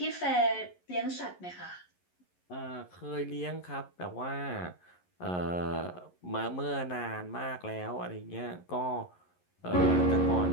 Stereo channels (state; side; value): late; right; 11 ms